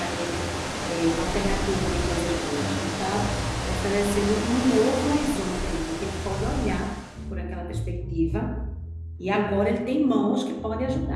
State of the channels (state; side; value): identical; both; correlation 1.00